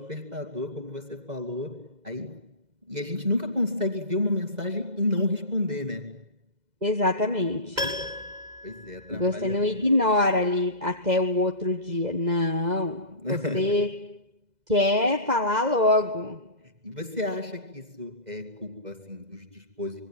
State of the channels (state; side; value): late; left; 2.0 ms